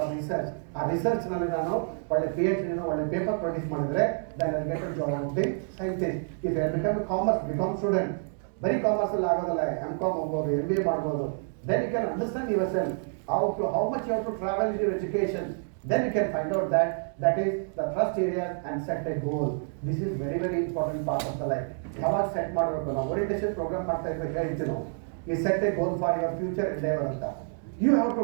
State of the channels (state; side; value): silent; left; 59 dB below the other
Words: research. ಆ ರಿಸರ್ಚ್ ನಲ್ಲಿ ನಾನು ಒಳ್ಳೆ PhD ಒಳ್ಳೆ ಪೇಪರ್ ಪ್ರೊಡ್ಯೂಸ್ ಮಾಡಿದ್ರೆ then I get a job of the scientist. If I become a commerce, become student, ಬರೀ ಕಾಮರ್ಸ್ ಅಲ್ಲಿ ಆಗೋದಲ್ಲ, M.Com ಹೋಗ್ಬೋದು, MBA ಮಾಡ್ಬೋದು, then you can understand yourself how much you have to travel in your education, then you can find out that is the trust area and set a goal. This is very very important part of the life. ಯಾವಾಗ set ಮಾಡಬೇಕು, ನಾವು orientation program ಮಾಡ್ತಾ ಇದ್ದಾಗ ಹೇಳ್ತೀವಿ ನಾವು, ಈ set a goal for your future endeavour ಅಂತ. You have